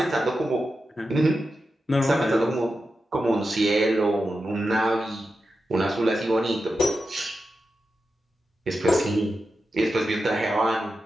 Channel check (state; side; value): normal; both; correlation 0.90